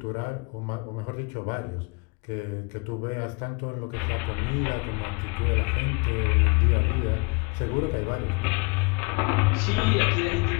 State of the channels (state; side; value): quieter; right; 30.0 dB